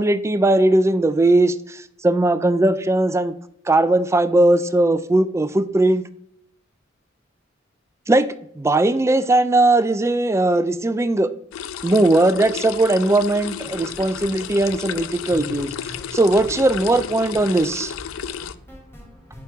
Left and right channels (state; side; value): normal; both; correlation 0.79